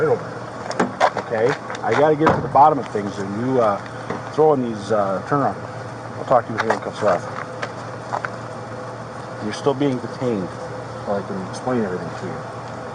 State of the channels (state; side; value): identical; both; correlation 1.00